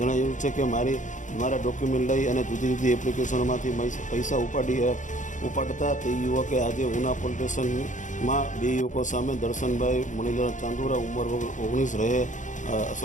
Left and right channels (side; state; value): right; late; 0.36 ms